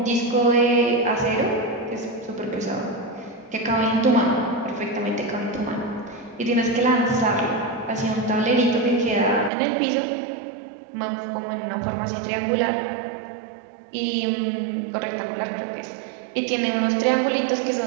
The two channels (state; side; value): drops out; left; at 9.5 s